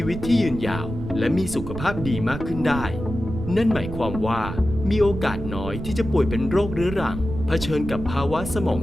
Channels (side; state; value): right; noise; rumble, 8 dB below the sound